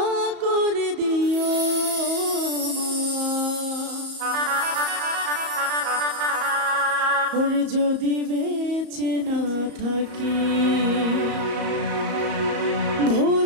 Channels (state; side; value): late; left; 34 ms